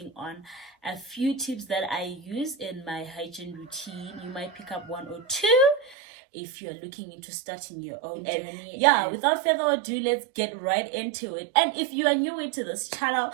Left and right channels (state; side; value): drops out; left; at 6.0 s